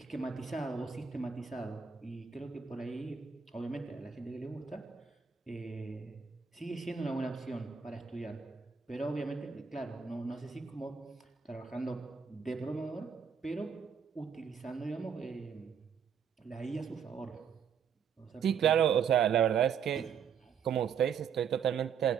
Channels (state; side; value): quieter; left; 7.1 dB